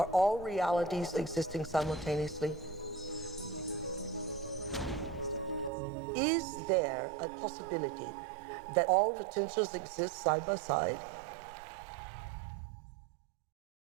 all realities existing simultaneously? Is there a possibility that all potentials exist side by side?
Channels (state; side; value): drops out; left; at 5.7 s